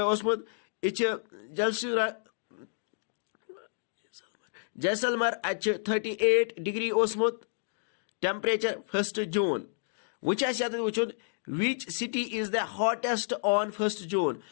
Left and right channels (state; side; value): silent; right; digital silence